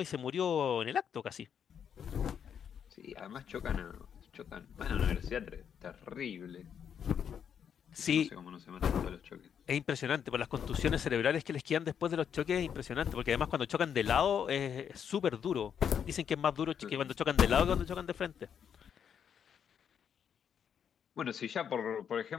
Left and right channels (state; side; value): quieter; right; 8.0 dB